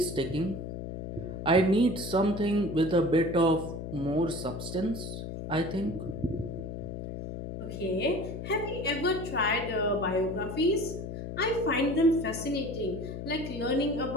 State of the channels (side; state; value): left; noise; hum, 7 dB below the sound